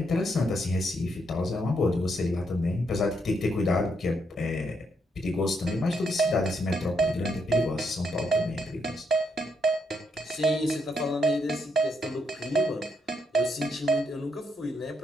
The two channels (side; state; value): both; normal; correlation 0.77